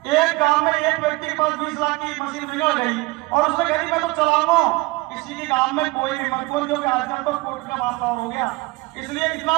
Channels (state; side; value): quieter; left; 22.7 dB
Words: एक गांव में एक व्यक्ति के पास 20 लाख की मशीन बिगड़ गई और उसने कह दी मैं तो चलाऊंगा, किसी के गांव में कोई भी मत बोल, जो कि आजकल तो कोर्ट का मामला हो गया। इसलिए इतना